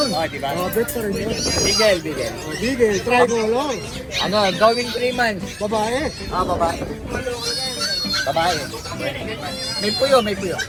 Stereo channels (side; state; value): both; identical; correlation 1.00